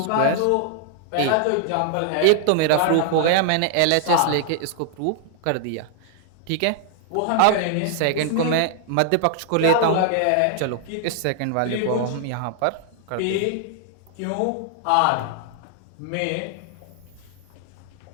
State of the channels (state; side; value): different; both; correlation 0.00